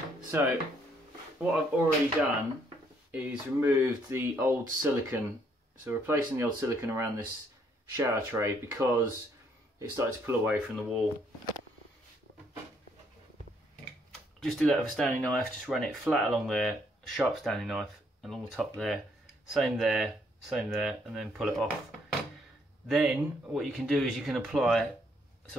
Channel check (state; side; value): normal; both; correlation 0.69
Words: So what I've already done is removed the old silicone. So replacing the old silicone around this shower tray because it started to pull away from the wall. Just do that with a Stanley knife, just run it flat along there, sharp Stanley knife along the top there, same there, and then pull it off. Then what you can do is you can apply